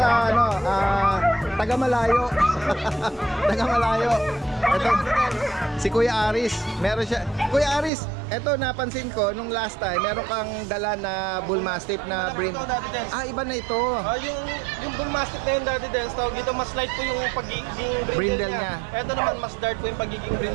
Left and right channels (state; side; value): drops out; left; at 7.9 s